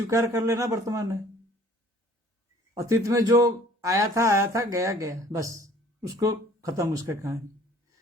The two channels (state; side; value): normal; both; correlation 0.53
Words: कर लेना वर्तमान है। अतीत में जो आया था गया गया, बस उसको खत्म, उसका कहानी।